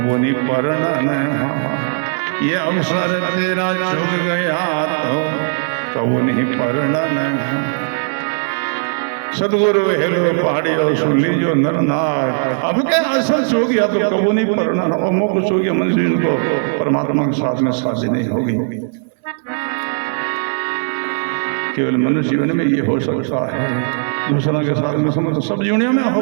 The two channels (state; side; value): silent; left; digital silence